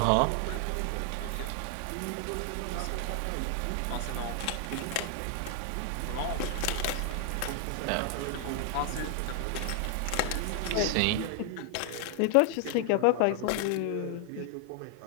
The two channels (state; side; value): different; both; correlation 0.00